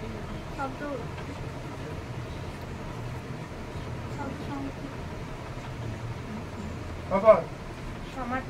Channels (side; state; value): both; identical; correlation 1.00